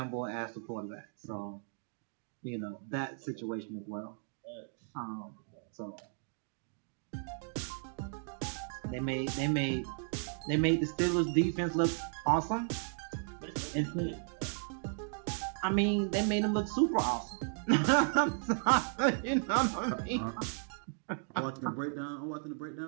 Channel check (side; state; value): left; silent; 54 dB below the other